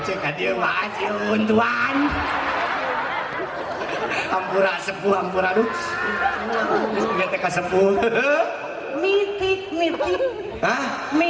ka dieu mah ajieun tuan. Ampura sepuh ampura aduh. Geus teh ka sepuh. Mitik. Hah?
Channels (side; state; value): both; identical; correlation 1.00